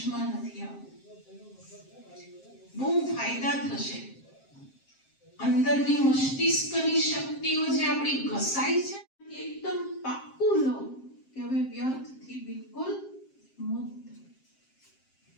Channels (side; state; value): right; late; 7.5 ms